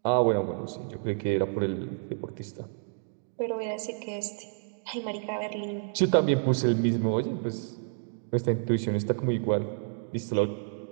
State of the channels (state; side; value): silent; left; digital silence